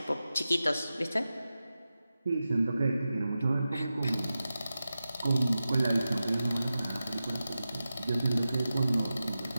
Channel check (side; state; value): both; inverted; correlation -0.93